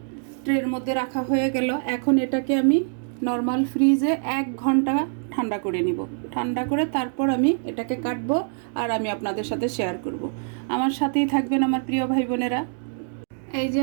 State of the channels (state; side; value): silent; left; digital silence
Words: ট্রের মধ্যে রাখা হয়ে গেল। এখন এটাকে আমি নর্মাল ফ্রিজে 1 ঘন্টা ঠান্ডা করে নিব। ঠান্ডা করে তারপর আমি এটাকে কাটবো আর আমি আপনাদের সাথে শেয়ার করব। আমার সাথেই থাকবেন আমার প্রিয় ভাই বোনেরা। এই যে